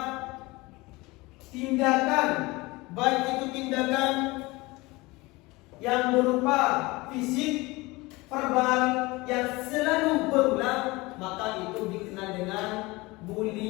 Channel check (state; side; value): quieter; right; 22.5 dB